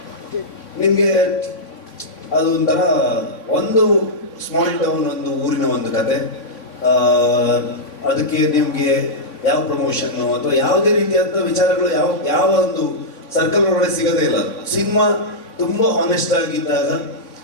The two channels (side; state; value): right; late; 3.3 ms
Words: ನಿಮಗೆ ಅದು ಒಂಥರ ಒಂದು ಸ್ಮಾಲ್ ಟೌನ್, ಒಂದು ಊರಿನ ಒಂದು ಕತೆ. ಅದಕ್ಕೆ ನಿಮಗೆ ಯಾವ ಪ್ರಮೋಷನ್ನು ಅಥವಾ ಯಾವುದೇ ರೀತಿಯಾದ ವಿಚಾರಗಳು ಯಾವ ಒಂದು ಸರ್ಕಲ್ ಒಳಗಡೆ ಸಿಗೋದೇ ಇಲ್ಲ. ಸಿನಿಮಾ ತುಂಬ ಹಾನೆಸ್ಟ್ ಆಗಿದ್ದಾಗ,